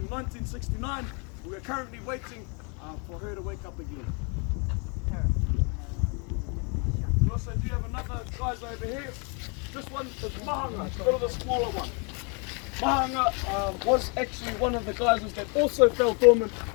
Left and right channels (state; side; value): quieter; right; 34.6 dB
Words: 1969. We are currently waiting for her to wake up again. We also do have another geyser over here. This one is Mahanga, it's a bit of the smaller one. Mahanga was actually one of the geysers that also fell dormant